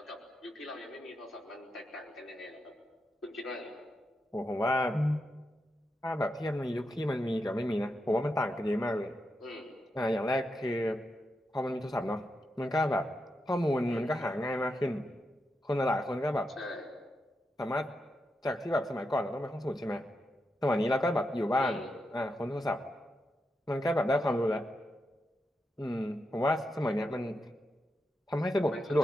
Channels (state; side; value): normal; both; correlation 0.86